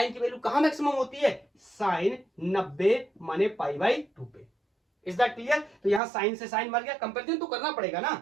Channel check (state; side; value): drops out; left; at 6.0 s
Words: की वैल्यू कहां मैक्सिमम होती है, साइन 90 माने पाई बाई 2 पे। Is that clear? तो यहां साइन से साइन मर गया, कंपेरिजन तो करना पड़ेगा ना,